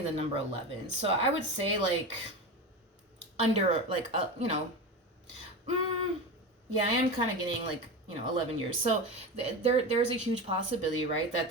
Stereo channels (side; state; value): both; normal; correlation 0.24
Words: the number 11. So I would say like under like you know, yeah, I am kind of getting like, you know, 11 years. So there's a huge possibility, right, that